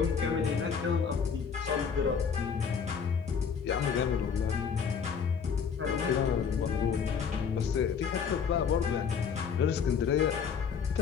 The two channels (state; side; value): quieter; right; 6.5 dB